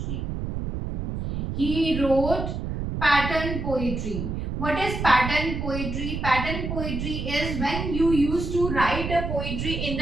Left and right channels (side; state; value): right; noise; rumble, 4 dB below the sound